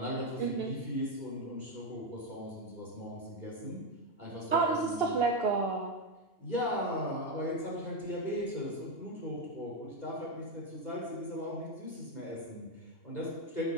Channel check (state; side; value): late; right; 2.8 ms